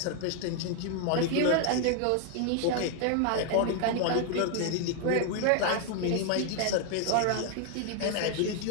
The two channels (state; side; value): different; both; correlation 0.00